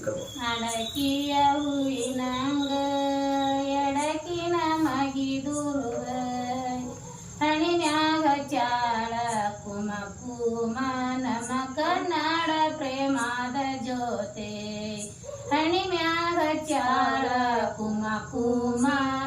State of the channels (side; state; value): both; identical; correlation 1.00